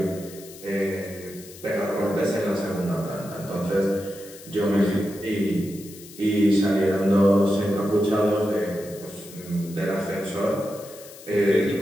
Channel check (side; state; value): left; noise; hiss, 18 dB below the sound